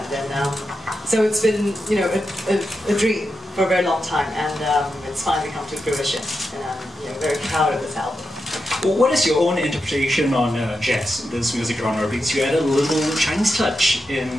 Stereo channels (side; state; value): both; normal; correlation 0.88